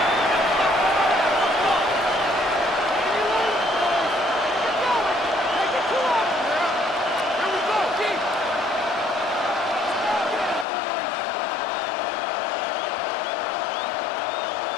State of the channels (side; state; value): right; drops out; at 10.7 s